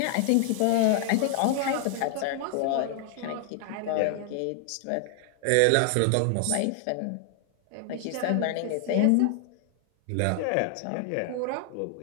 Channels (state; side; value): different; both; correlation 0.00